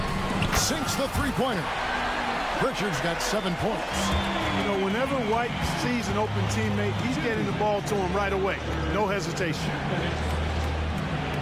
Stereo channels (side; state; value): both; identical; correlation 1.00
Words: Sinks the three-pointer. Pritchard's got 7 points. You know, whenever White sees an open teammate, he's getting the ball to him right away. No hesitation.